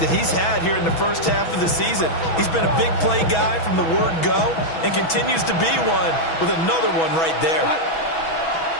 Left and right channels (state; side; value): late; right; 6.1 ms